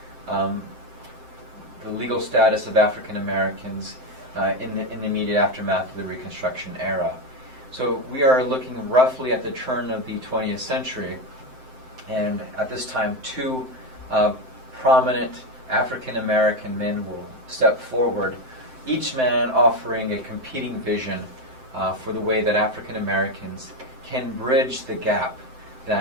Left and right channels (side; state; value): left; late; 7.7 ms